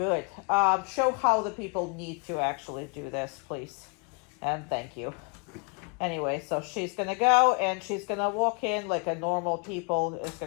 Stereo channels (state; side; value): quieter; right; 35.6 dB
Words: Show how the people need to actually do this, please. And thank you. Anyway, so she's going to go and she's going to walk in like a normal people is